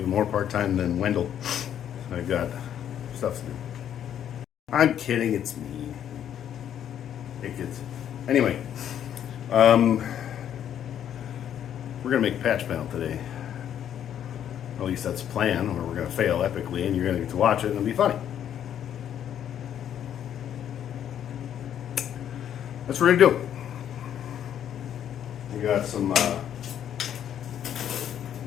more part-time than Wendell. I've got stuff to do. I'm kidding, it's me. Hey kids. Anyway, we're gonna make a patch panel today. At least that's the plan, or we're gonna fail epically and you're gonna get to watch it and it'll be funny. That's what we're gonna do. We got some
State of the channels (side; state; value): right; quieter; 9.9 dB